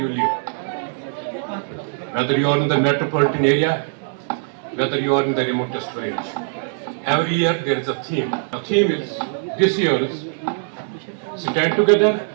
live. Whether you are in the metropolitan area, whether you are in the remotest village. Every year there is a theme. The theme is this year's stand together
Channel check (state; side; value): silent; left; 65 dB below the other